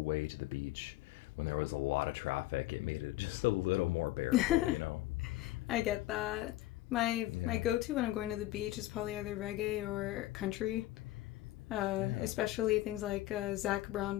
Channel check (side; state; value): right; quieter; 16.2 dB